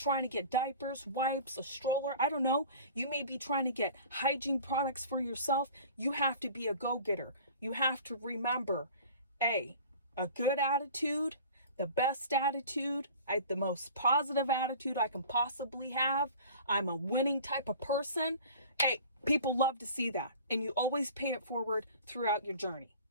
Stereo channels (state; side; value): inverted; both; correlation -0.43